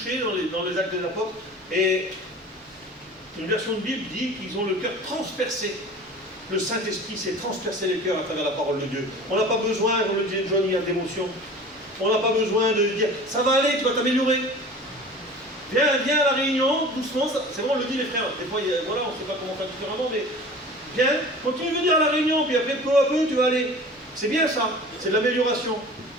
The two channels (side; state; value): both; normal; correlation 0.40